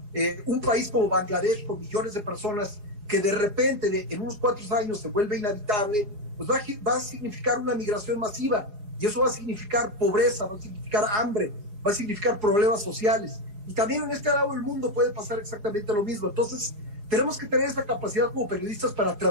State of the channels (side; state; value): left; late; 4.8 ms